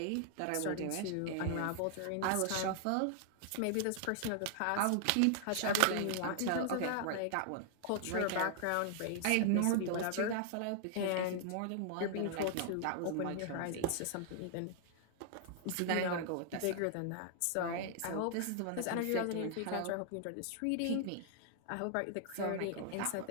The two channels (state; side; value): different; both; correlation 0.00